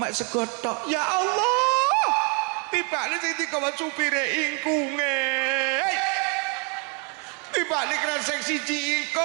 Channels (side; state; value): left; quieter; 32.6 dB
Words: sego tok. Ya Allah. Tibane sing digawa supire ingkunge. Tibane kresek siji